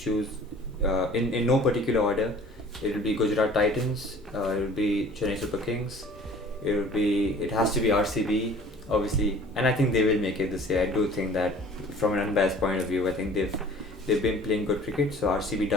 in no particular order. It will be Gujarat Titans. It will be Chennai Super Kings. It has to be RCB, obviously, and I think they will make it this year. I do think that from an unbiased point of view, I think they've been playing good cricket. So RCB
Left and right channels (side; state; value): both; normal; correlation 0.48